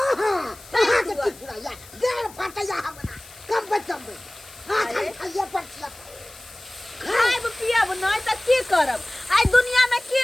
कहां के की पूरा या देर फटैया हमरा कम हां खाइए पड़छिया खाइब पियब नहीं त की करब आई दुनिया में की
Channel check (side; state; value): left; noise; hiss, 21 dB below the sound